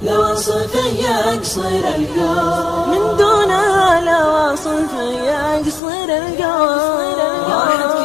لوصف يقصر القول من دونها لوصف يقصر القول. راحت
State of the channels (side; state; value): right; drops out; at 5.8 s